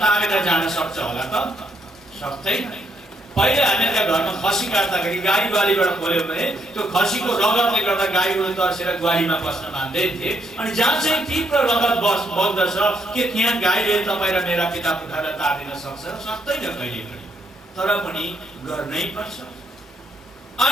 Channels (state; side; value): normal; both; correlation 0.75